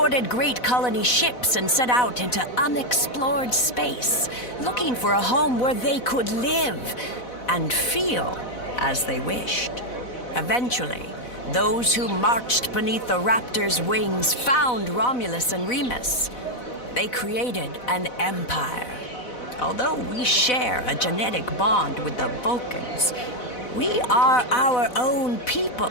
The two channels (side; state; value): right; late; 4.0 ms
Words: great colony ships and set out into unexplored space, looking for a home where they could live and feel as they wished. Eventually, those who marched beneath the Raptor's wings found Romulus and Remus. They created an empire. Although we share a genetic bond with the Vulcans, we are our own people.